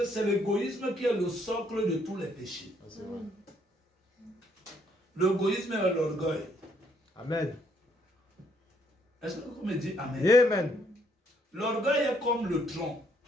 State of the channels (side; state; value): both; normal; correlation 0.69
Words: c'est l'égoïsme qui est le socle de tous les péchés. C'est vrai. L'égoïsme est l'orgueil. Amen. Est-ce que vous me dites Amen? Amen. L'orgueil est comme le tronc.